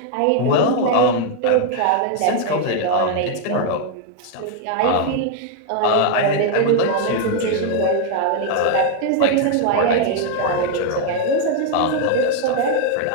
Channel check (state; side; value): different; both; correlation 0.01